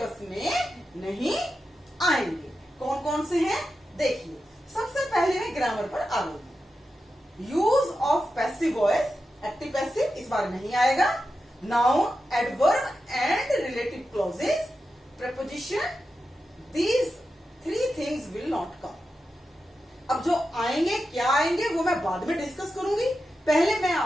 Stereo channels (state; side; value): normal; both; correlation 0.90